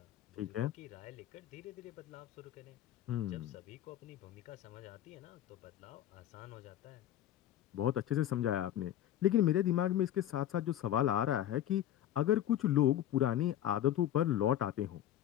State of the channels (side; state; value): right; quieter; 11.9 dB